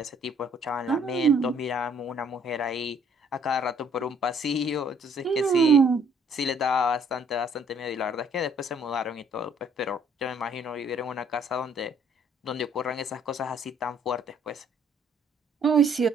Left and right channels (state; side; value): normal; both; correlation 0.62